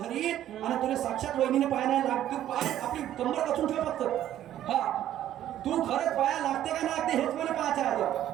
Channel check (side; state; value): left; quieter; 12.0 dB